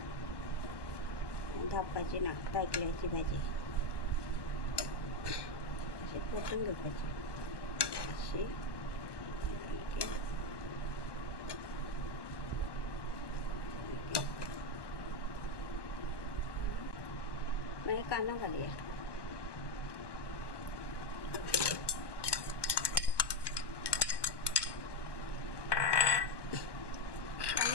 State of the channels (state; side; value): late; right; 1.2 ms